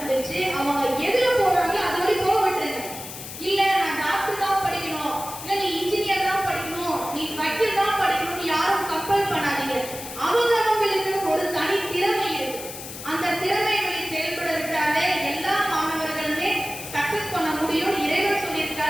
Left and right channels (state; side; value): noise; left; hiss, 11 dB below the sound